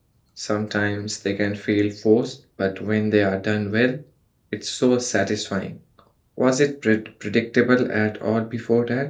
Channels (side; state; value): both; identical; correlation 1.00